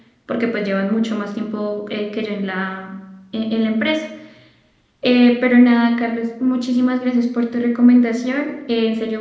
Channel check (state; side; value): identical; both; correlation 1.00